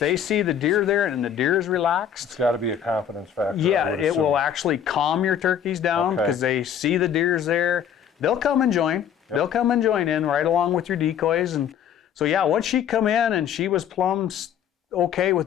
see the deer there and the deer is relaxed, it's got to be a confidence factor. Yeah, it will actually calm your turkeys down because they see the deer's there. They'll come and join. Yep. They'll come and join in right along with your decoys. And so once she come in and she was plumb okay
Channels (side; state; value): right; quieter; 8.8 dB